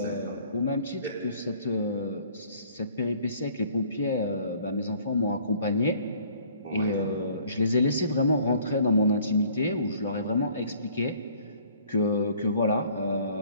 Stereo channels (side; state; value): both; inverted; correlation -0.56